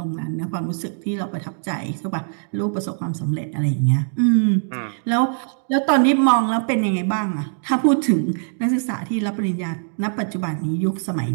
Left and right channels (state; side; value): silent; left; digital silence